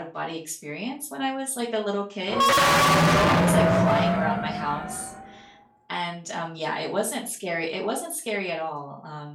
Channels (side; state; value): both; identical; correlation 1.00